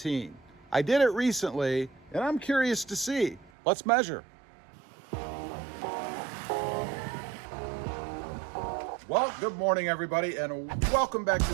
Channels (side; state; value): left; drops out; at 3.5 s